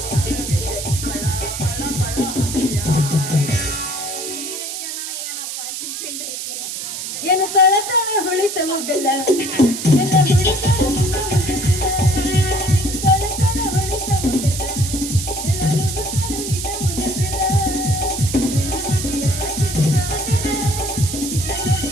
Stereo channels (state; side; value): noise; right; hiss, 6 dB below the sound